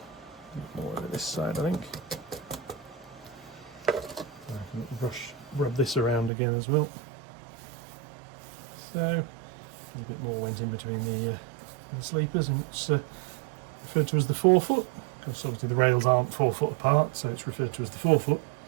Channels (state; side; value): drops out; left; at 6.3 s